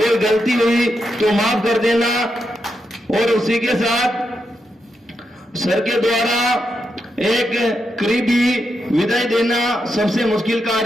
गलती हुई तो माफ कर देना। और उसी के साथ सर के द्वारा एक करीबी विदाई देना सबसे मुश्किल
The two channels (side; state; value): both; normal; correlation 0.84